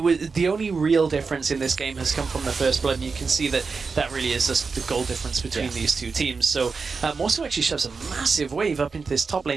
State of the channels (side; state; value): left; quieter; 4.8 dB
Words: the only real difference in this game has come from the first blood, and you can see that that really is just the goal difference between these two teams. So Morsu actually shoves a massive wave up into this top